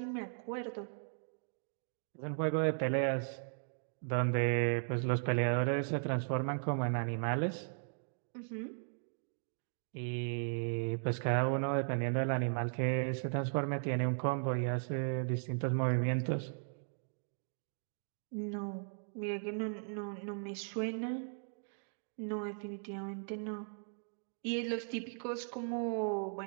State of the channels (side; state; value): left; silent; digital silence